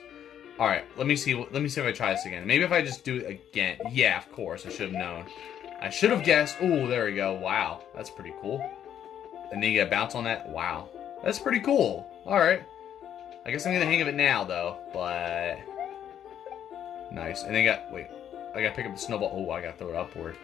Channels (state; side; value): quieter; right; 9.8 dB